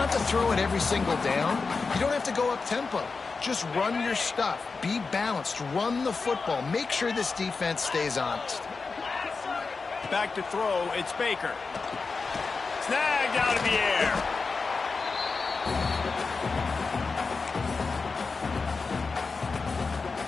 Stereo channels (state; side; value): quieter; right; 4.4 dB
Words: to throw it every single down. You don't have to go up tempo. Just run your stuff. Be balanced. Run the football. Make sure this defense stays honest. Back to throw. It's Baker. Snagged out of the air.